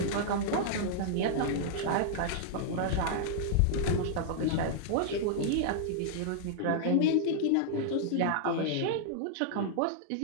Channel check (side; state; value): both; different; correlation -0.01